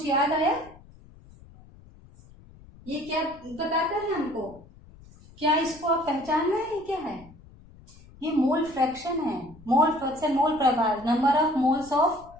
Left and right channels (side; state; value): left; noise; rumble, 23 dB below the sound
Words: याद आया, ये क्या बताता है हमको, क्या इसको आप पहचान रहे हैं, क्या है ये, मोल फ्रैक्शन है। मोल फ्रैक्शन, मोल प्रभार, number of moles of